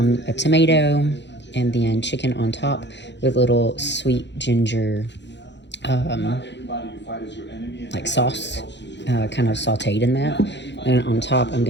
tomato, and then chicken on top with little sweet ginger like sauce, kind of sauteed in that. And on top I'm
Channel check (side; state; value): right; late; 0.51 ms